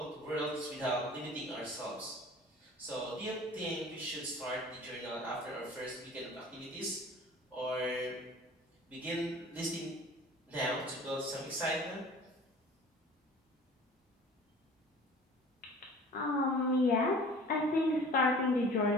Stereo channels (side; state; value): both; normal; correlation 0.45